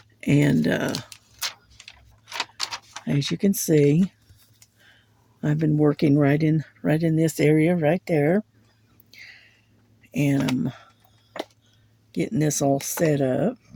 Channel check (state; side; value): identical; both; correlation 1.00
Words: and as you can see, I've been working right in this area right there, and I'm getting this all set up.